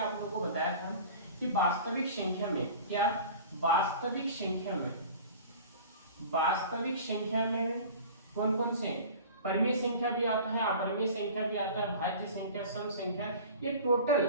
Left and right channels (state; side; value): inverted; both; correlation -0.41